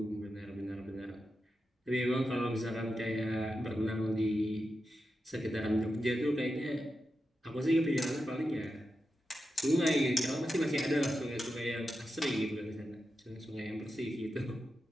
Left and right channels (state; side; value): normal; both; correlation 0.89